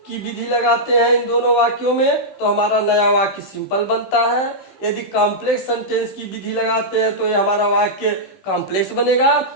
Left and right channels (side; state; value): right; late; 16 ms